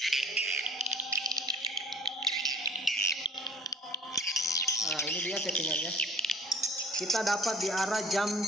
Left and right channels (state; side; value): normal; both; correlation 0.50